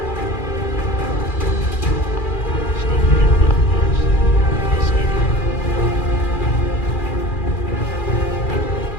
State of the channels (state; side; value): late; right; 2.4 ms